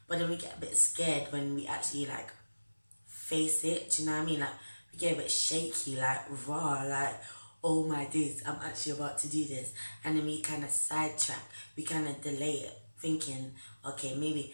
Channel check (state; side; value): inverted; both; correlation -1.00